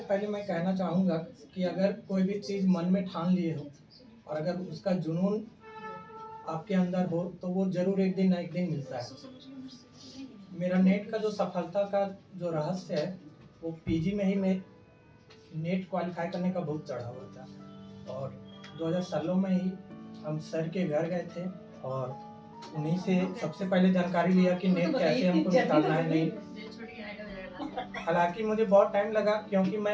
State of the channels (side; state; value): both; identical; correlation 1.00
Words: पहले मैं कहना चाहूँगा कि अगर कोई भी चीज़ मन में ठान लिए हो और अगर उसका जुनून आपके अंदर हो तो वो जरूर एक दिन ना एक दिन मिलता है। मेरा नेट का जो सफलता का जो रहस्य है वो PG में ही मैं नेट क्वालिफाई करने का बहुत चढ़ा हुआ था। और 2016 में ही हम सर के घर गए थे और उन्हीं से सबसे पहले जानकारी लिया कि नेट कैसे हमको निकालना है। नहीं, हालांकि मुझे बहुत टाइम लगा क्योंकि